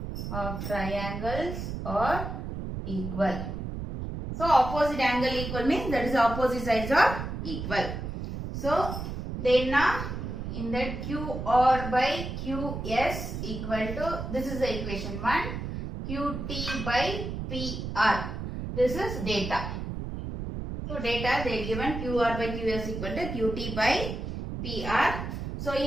are equal. So opposite angle equal means that is opposite sides are equal. So then now in that QR by QS equal to, this is the equation 1, QT by PR. This is data. So data they given QR by QS equal to QT by PR. So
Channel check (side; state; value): right; noise; rumble, 5 dB below the sound